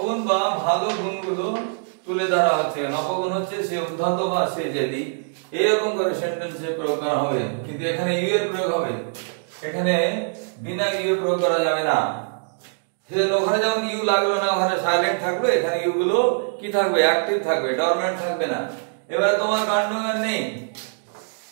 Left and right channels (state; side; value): silent; left; digital silence